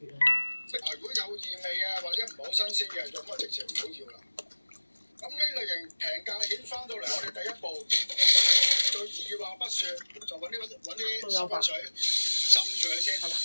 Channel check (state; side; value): inverted; both; correlation -1.00